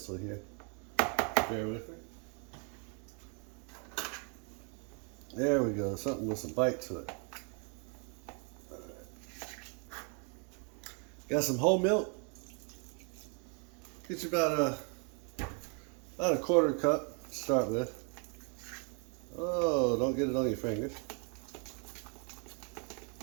here. Bear with me. There we go, something with some bite to it. Got some whole milk. Get you about a quarter cup to start with. Oh, don't get it on your fingers.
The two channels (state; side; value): quieter; left; 37.5 dB